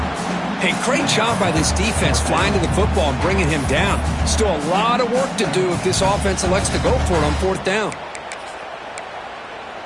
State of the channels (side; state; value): both; identical; correlation 1.00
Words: Hey, great job by this defense flying to the football and bringing him down. Still a lot of work to do if this offense elects to go for it on fourth down.